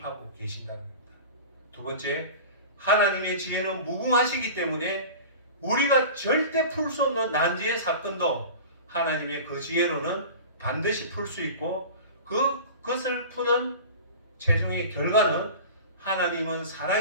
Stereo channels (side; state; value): both; inverted; correlation -0.36